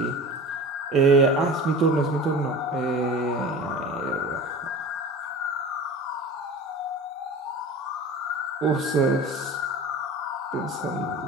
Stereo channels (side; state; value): both; normal; correlation 0.36